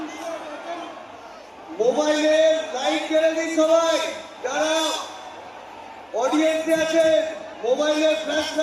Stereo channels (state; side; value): identical; both; correlation 1.00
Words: मोबाइले लाइट জ্বালিয়ে দিন সবাই। যারা ऑडियंस আছে मोबाइले फ्लैश